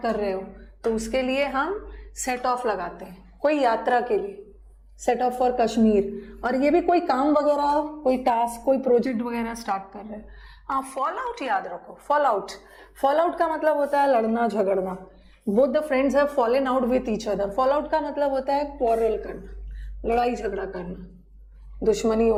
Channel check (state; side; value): identical; both; correlation 1.00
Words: कर रहे हो तो उसके लिए हम सेट ऑफ लगाते हैं, कोई यात्रा के लिए, सेट ऑफ फॉर कश्मीर। और ये भी कोई काम वगैरह, कोई टास्क, कोई प्रोजेक्ट वगैरह स्टार्ट कर रहे हैं। हाँ, फॉल आउट याद रखो, फॉल आउट का मतलब होता है लड़ना झगड़ना। Both the friends have fallen out with each other. Fall out का मतलब होता है क्वारल करना, लड़ाई झगड़ा करना, दुश्मनी